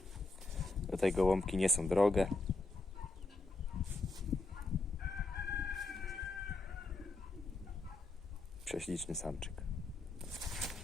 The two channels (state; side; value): quieter; right; 3.2 dB